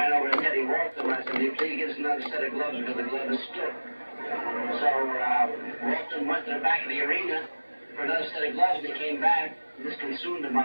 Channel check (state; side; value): inverted; both; correlation -1.00